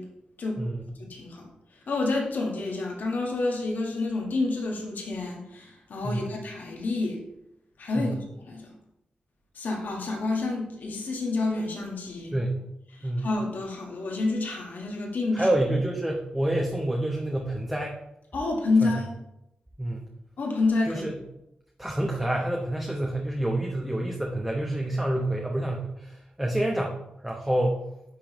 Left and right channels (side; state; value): both; normal; correlation 0.89